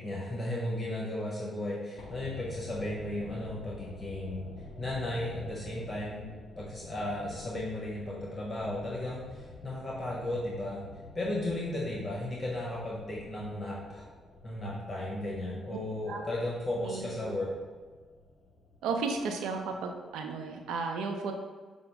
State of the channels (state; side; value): normal; both; correlation 0.71